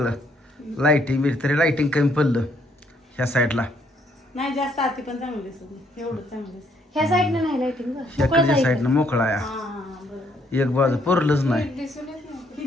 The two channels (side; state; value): both; normal; correlation 0.69